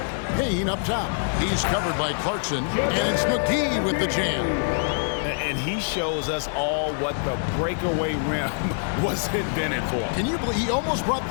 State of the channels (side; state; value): right; silent; 62 dB below the other